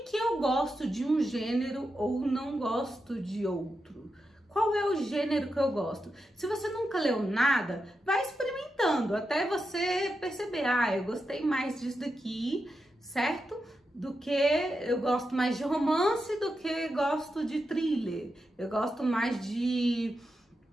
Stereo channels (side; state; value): both; normal; correlation 0.88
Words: eu gosto de um gênero ou não gosto de outro. Qual é o gênero que eu gosto? Se você nunca leu nada, vai experimentando até você perceber: eu gostei mais disso daqui, certo? Do que eu gosto mais de romance do que gosto de thriller. Eu gosto mais de